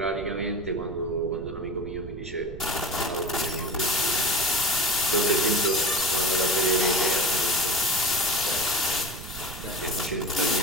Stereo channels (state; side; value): noise; right; rumble, 13 dB below the sound